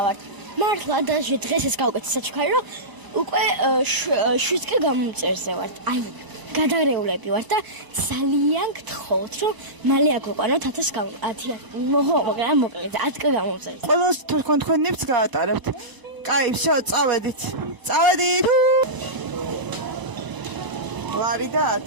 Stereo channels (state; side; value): late; left; 1.0 ms